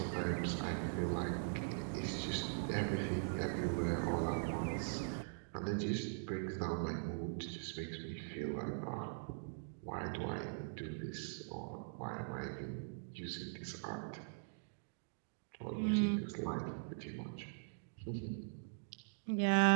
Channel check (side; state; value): left; silent; digital silence